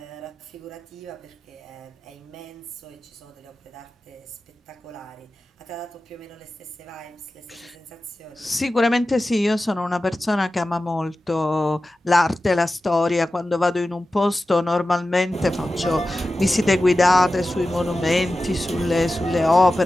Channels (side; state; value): both; normal; correlation 0.94